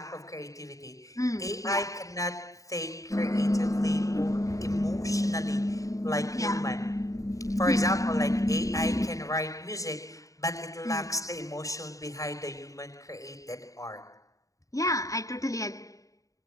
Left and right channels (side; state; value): right; late; 0.16 ms